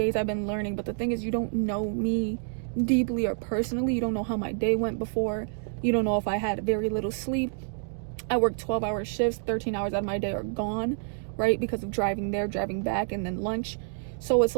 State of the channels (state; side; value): silent; left; digital silence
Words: I've been learning, but the thing is, you don't know me deeply or personally. You don't know how my day went before. You don't know if I had very little sleep. I work 12-hour shifts, 13 hours out of my day are gone, right? Because of driving there, driving back, and then lunch. So it's